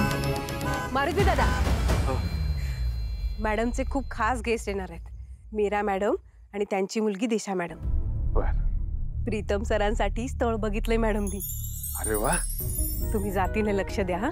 मारुती दादा, मॅडमचे खूप खास गेस्ट येणार आहेत. मीरा मॅडम आणि त्यांची मुलगी दिशा मॅडम. बर. प्रीतम सरांसाठी स्थळ बघितलंय मॅडमनी. अरे वा. तुम्ही जातीने लक्ष द्या हा.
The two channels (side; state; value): both; identical; correlation 1.00